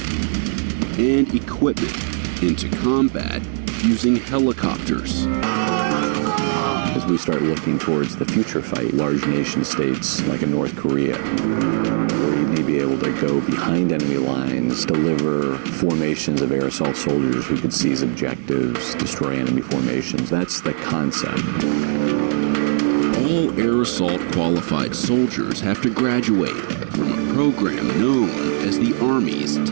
and equipment into combat using helicopters. As we start looking towards the future fight, large nation states like in North Korea, where you need to be able to go behind enemy lines, deliver formations of aerosol soldiers who could seize objectives, destroy enemy formations. That's the concept. All aerosol qualified soldiers have to graduate from a program known as the Army's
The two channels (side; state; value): left; silent; digital silence